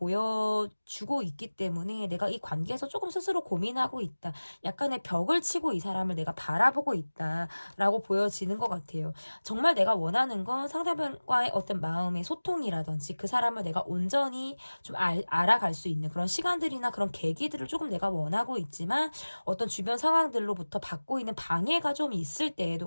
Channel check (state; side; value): inverted; both; correlation -1.00